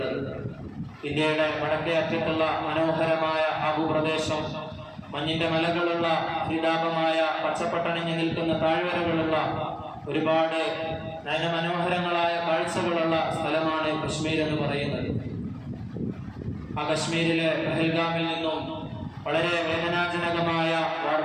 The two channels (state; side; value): identical; both; correlation 1.00